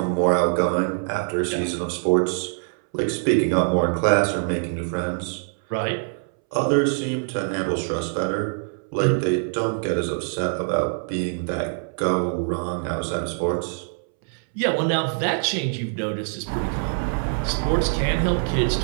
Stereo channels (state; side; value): silent; left; 63 dB below the other